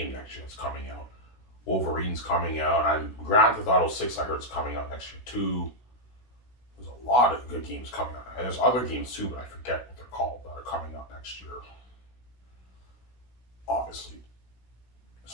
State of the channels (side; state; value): right; late; 16 ms